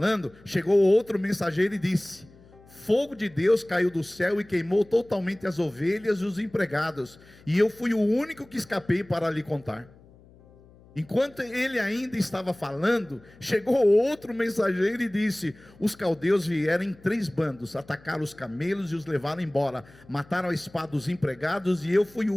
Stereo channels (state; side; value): noise; left; hum, 25 dB below the sound